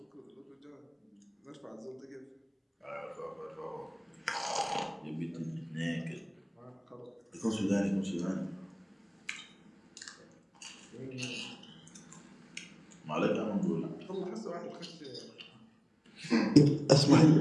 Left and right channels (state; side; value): identical; both; correlation 1.00